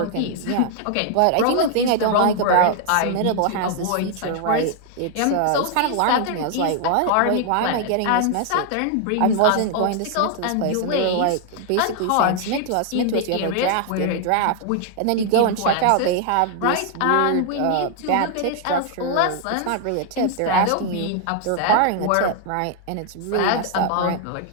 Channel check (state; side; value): different; both; correlation 0.00